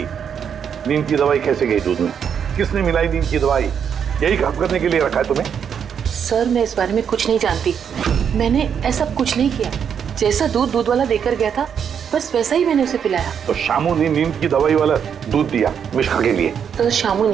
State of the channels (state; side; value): quieter; left; 7.7 dB